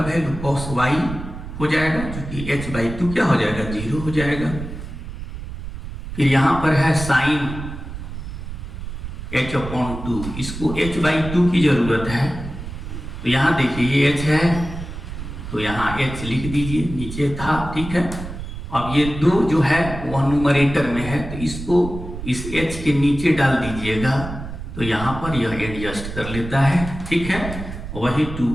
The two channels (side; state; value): right; noise; rumble, 9 dB below the sound